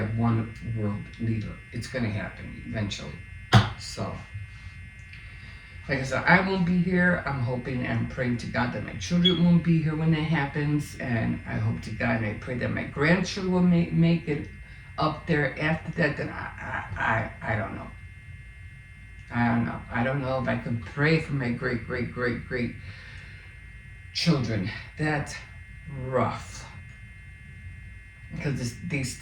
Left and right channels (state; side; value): identical; both; correlation 1.00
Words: one world leader. It's going to happen eventually. So, like I said, I won't be here. I'm hoping and praying to God that my children won't be here when that happens. And I hope to God and I pray that my grandchildren will make it up there after that. Then I don't know. I don't know if I can pray for my great children. That's rough. Because they